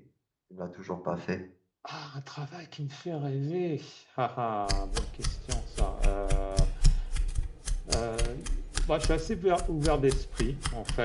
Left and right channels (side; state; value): both; identical; correlation 1.00